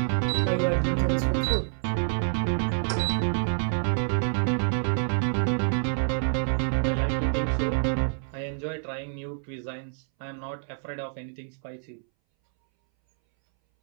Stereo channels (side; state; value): left; silent; 60 dB below the other